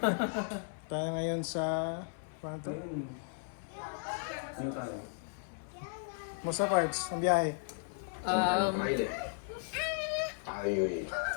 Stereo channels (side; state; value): right; silent; 54 dB below the other